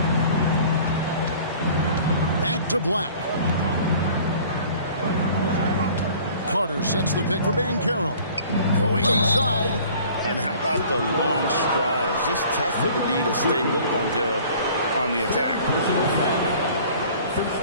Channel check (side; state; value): both; inverted; correlation -0.49